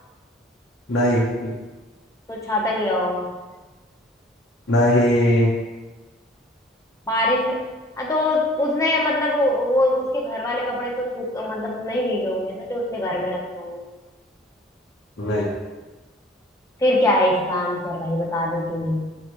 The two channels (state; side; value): normal; both; correlation 0.50